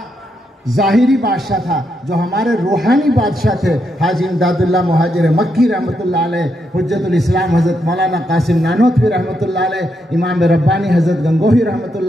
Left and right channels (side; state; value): both; normal; correlation 0.80